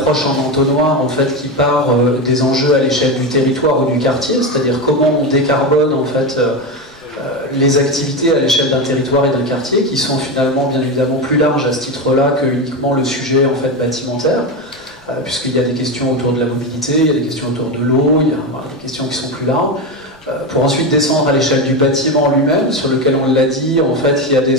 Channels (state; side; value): normal; both; correlation 0.16